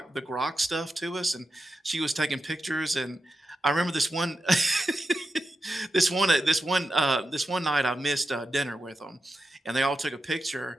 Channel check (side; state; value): both; normal; correlation 0.90